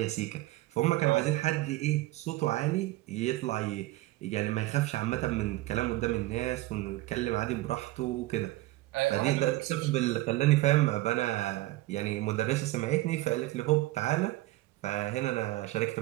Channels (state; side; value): quieter; left; 18.4 dB